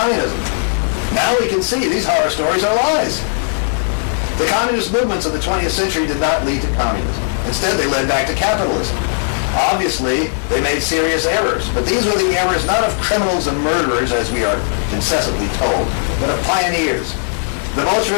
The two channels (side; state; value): right; silent; digital silence